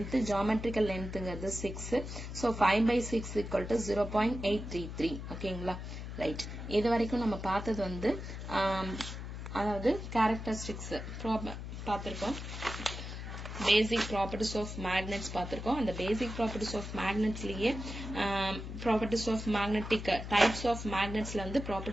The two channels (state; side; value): noise; left; hum, 8 dB below the sound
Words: geometrical length ங்கிறது 6. So 5/6 equal to 0.833. ஓகேங்களா. Right, இது வரைக்கும் நம்ம பார்த்தது வந்து அதாவது கேரக்டரிஸ்டிக்ஸ் பார்த்துருக்கோம். பேசிக் ப்ராப்பர்ட்டிஸ் ஆஃப் மேக்னெட்ஸ் பார்த்துருக்கோம். அந்த பேசிக் ப்ராப்பர்ட்டிஸ் ஆஃப் மேக்னெட்ஸ்லயே properties of magnetic types of மேக்னெட்ஸ்ல வந்து